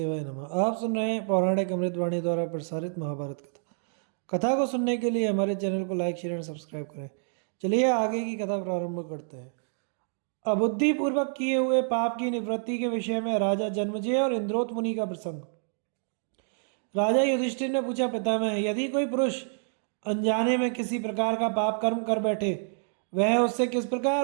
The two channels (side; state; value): left; silent; 59 dB below the other